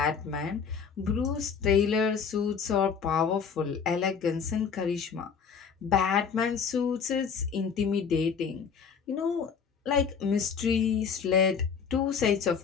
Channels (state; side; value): quieter; right; 6.4 dB